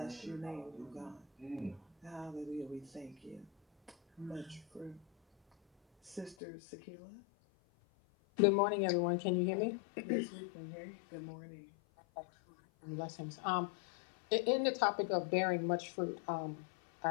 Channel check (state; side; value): drops out; right; at 6.4 s